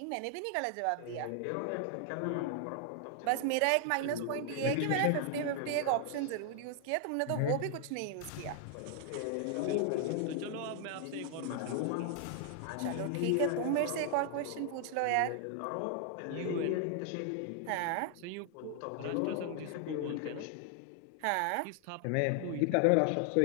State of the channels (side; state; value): both; different; correlation 0.00